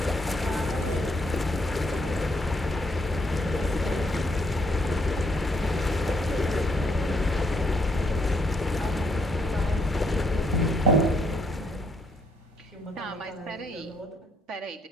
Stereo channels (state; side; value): normal; both; correlation 0.72